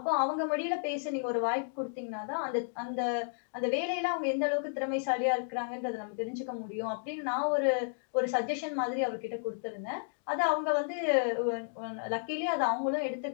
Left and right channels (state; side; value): silent; right; digital silence